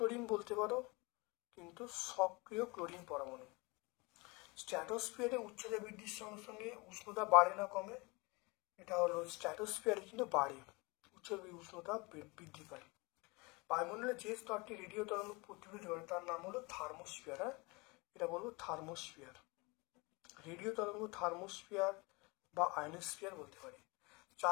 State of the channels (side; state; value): right; quieter; 26.5 dB